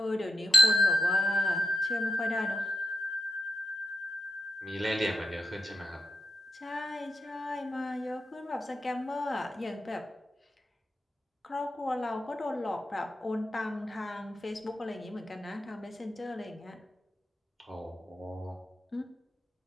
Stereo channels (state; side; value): normal; both; correlation 0.88